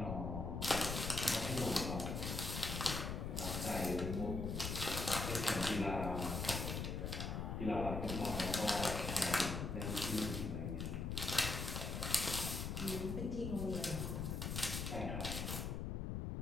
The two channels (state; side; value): noise; left; rumble, 2 dB below the sound